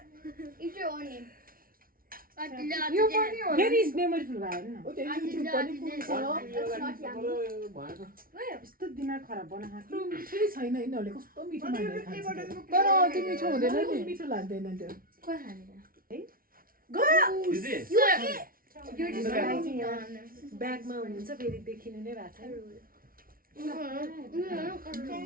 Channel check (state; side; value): late; left; 0.42 ms